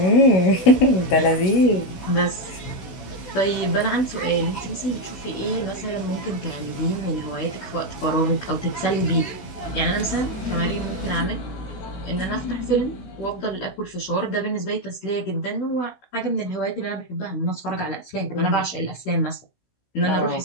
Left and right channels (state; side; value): late; right; 16 ms